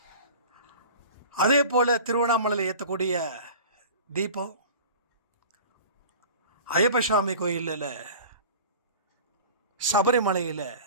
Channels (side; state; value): both; inverted; correlation -0.40